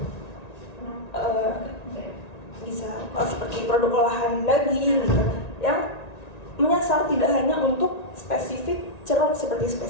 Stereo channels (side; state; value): right; late; 1.9 ms